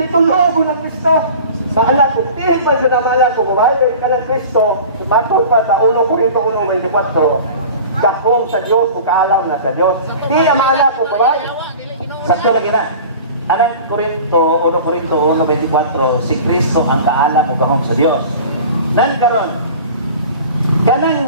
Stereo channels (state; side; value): inverted; both; correlation -0.40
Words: ko ng Kristo. Maalat ko, tihin pa siya na maalat ko, kumahal ka ng Kristo, matol pa sa 1 Corinto 1:24, dakong sa Diyos, kaalam na sa Diyos. Di ang maalat ko, kumahal. Sakto lagi na. Anang Corinto 1:24, si Kristo ang kaalam o gahom sa Dios. Nan karon,